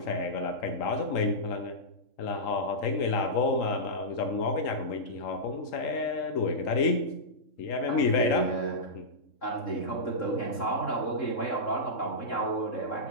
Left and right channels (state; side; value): late; right; 3.8 ms